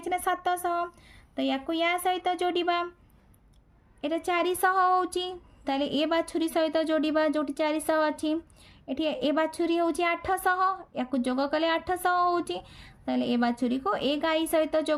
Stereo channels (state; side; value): identical; both; correlation 1.00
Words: छि ना 700 तो याको या सहित जोड़िबा एटा 400 होछि ताले ए बाछुरी सहित जोड़िबा जोटी 400 अछि एठी ए बाछुरी होछि 800 याको जोग कले 800 होछि ताले ए बाछुरी को ए गाई सहित